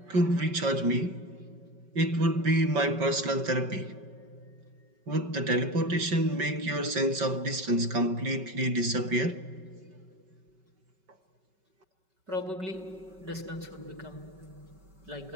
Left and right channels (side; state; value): left; late; 5.3 ms